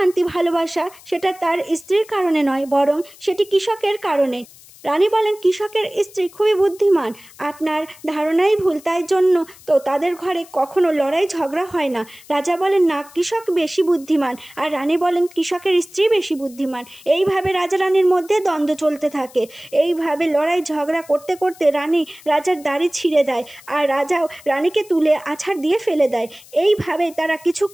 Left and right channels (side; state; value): left; noise; hiss, 23 dB below the sound